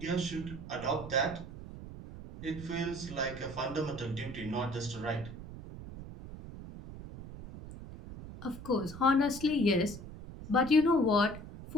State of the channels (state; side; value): noise; right; rumble, 12 dB below the sound